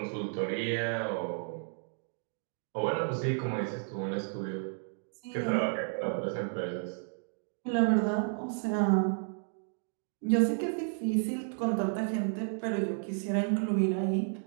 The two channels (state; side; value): silent; left; 56 dB below the other